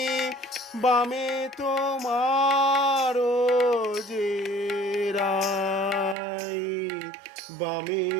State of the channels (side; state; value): left; drops out; at 6.2 s